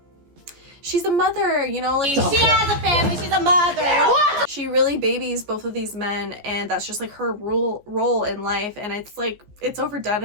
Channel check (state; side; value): late; left; 14 ms